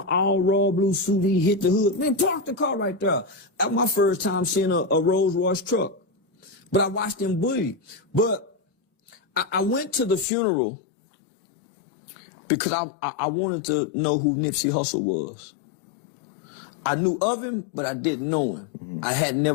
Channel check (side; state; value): right; drops out; at 10.2 s